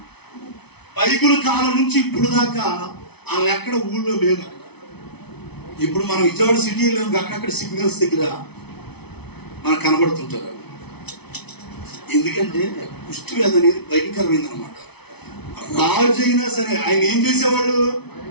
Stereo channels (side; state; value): right; late; 0.99 ms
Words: బైబిల్ కాలం నుంచి ఇప్పుడు దాకా వాళ్ళు ఎక్కడ ఊళ్ళో లేదు. ఇప్పుడు మనం విజయవాడ సిటీలో అక్కడక్కడ సిగ్నల్స్ దగ్గర మనకు కనబడుతుంటారు. ఎందుకంటే కుష్ఠవ్యాధి అనేది భయంకరమైంది అనమాట. రాజు అయినా సరే ఆయన ఏం చేసేవాళ్ళు?